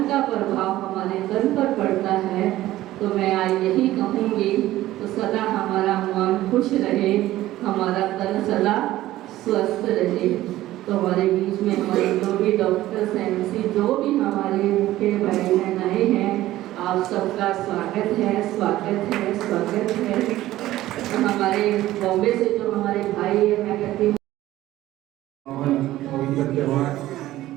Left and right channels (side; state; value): left; quieter; 15.3 dB